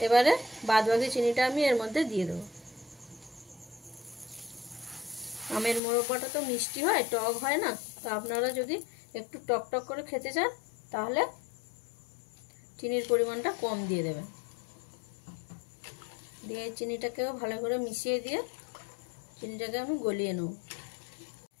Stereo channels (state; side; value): drops out; right; at 5.8 s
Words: এবারে বাদবাকি চিনিটা আমি এর মধ্যে দিয়ে দেব। আমের মুরব্বাটা তো মিষ্টি হয়, টক হয় না, তো আপনারা যদি একটু টক টক করে খেতে চান তাহলে চিনির পরিমাণটা কম দিয়ে দেবেন। দিয়ে চিনিটাকেও ভালো করে মিশিয়ে দিয়ে চিনিটাকে আমি গলিয়ে নেব।